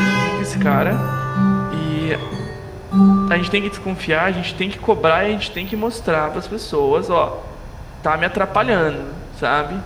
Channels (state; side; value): identical; both; correlation 1.00